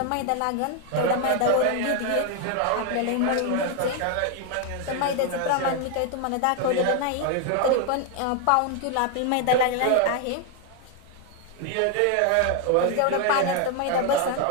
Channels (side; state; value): both; different; correlation 0.01